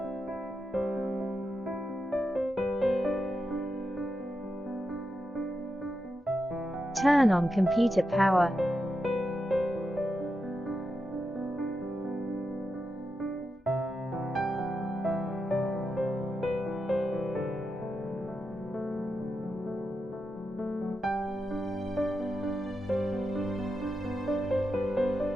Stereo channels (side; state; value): both; normal; correlation 0.87